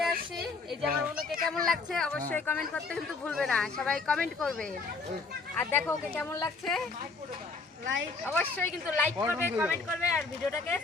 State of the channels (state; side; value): quieter; right; 4.2 dB